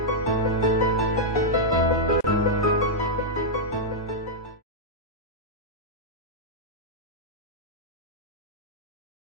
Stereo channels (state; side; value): normal; both; correlation -0.06